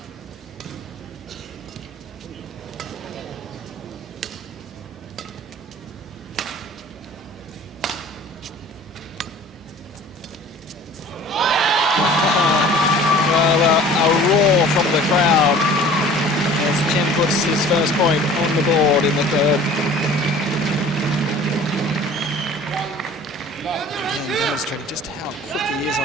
From the crowd as Chen puts his first point on the board in the third. Again, demonstrating just how quick he is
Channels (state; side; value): normal; both; correlation 0.46